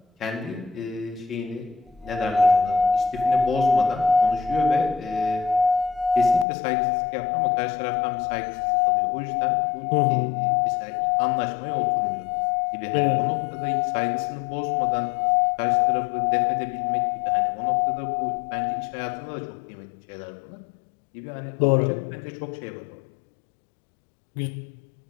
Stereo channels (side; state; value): right; drops out; at 6.5 s